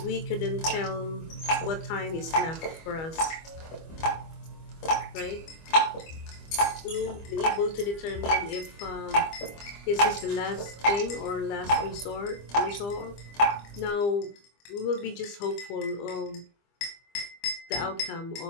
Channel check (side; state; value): right; late; 25 ms